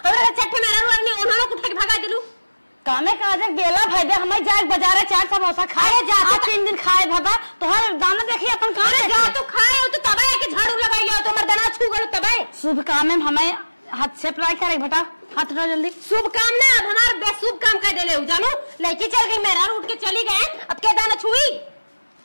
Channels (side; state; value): both; inverted; correlation -1.00